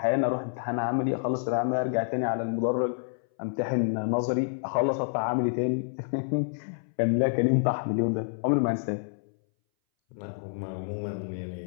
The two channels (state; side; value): silent; right; 59 dB below the other